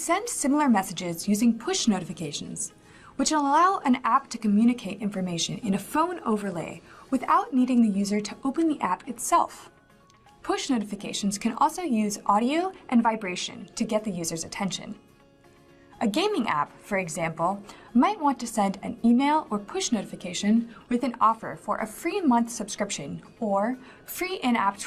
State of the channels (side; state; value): both; identical; correlation 1.00